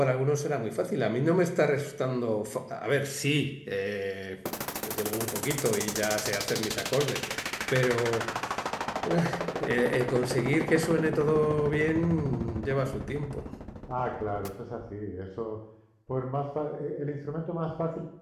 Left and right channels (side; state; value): both; identical; correlation 1.00